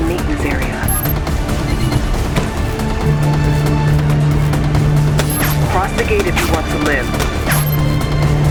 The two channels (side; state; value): both; identical; correlation 1.00